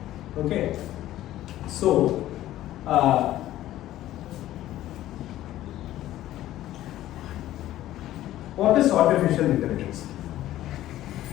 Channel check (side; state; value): right; quieter; 14.0 dB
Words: Okay, so what is artificial intelligence?